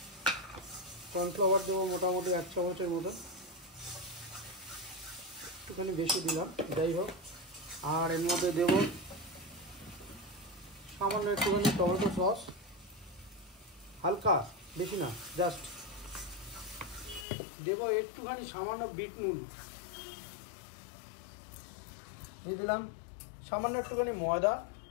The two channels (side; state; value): right; drops out; at 17.2 s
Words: কর্নফ্লাওয়ার দেবো মোটামুটি 1 চামচের মতো, একটুখানি বেশি দিলাম, যাই হোক। আর এর মধ্যে দেবো সামান্য একটুখানি টমেটো সস, হালকা, বেশি না, জাস্ট দেবো একটুখানি সামান্য বিট নুন দিয়ে দিলাম, সামান্য একটুখানি ময়দা।